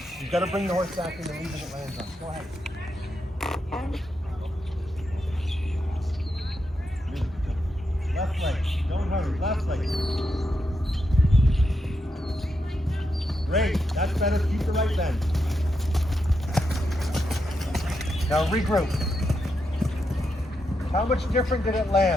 You've got to bring the horse back in the lead that it lands on. Go ahead. Left leg. Don't hurry. Left leg. Great. That's better. Keep the right bend. Now regroup. How much different did it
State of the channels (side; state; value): both; normal; correlation 0.84